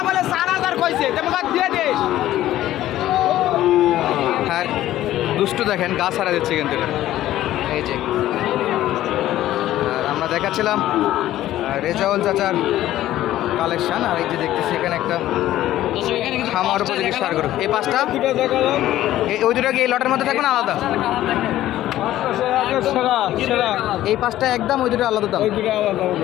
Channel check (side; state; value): right; quieter; 13.9 dB